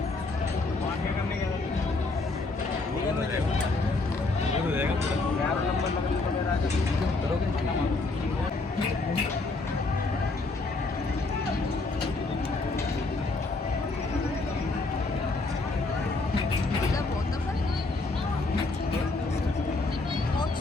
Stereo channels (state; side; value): quieter; right; 3.4 dB